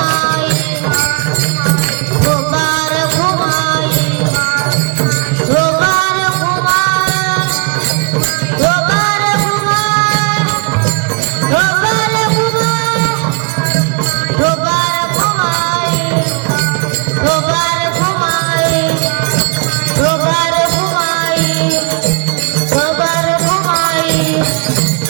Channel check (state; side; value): quieter; left; 34.2 dB